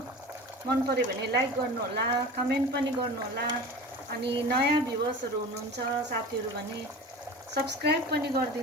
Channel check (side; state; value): both; normal; correlation 0.35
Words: मन पर्यो भने लाइक गर्नु होला, कमेन्ट पनि गर्नु होला। अनि नयाँ भ्युअर्सहरु हुनुहुन्छ साथीहरु भने सब्स्क्राइब पनि